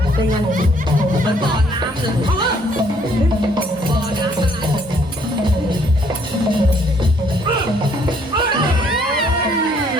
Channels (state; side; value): normal; both; correlation 0.65